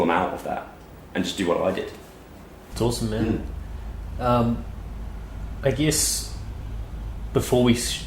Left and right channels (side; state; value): both; identical; correlation 1.00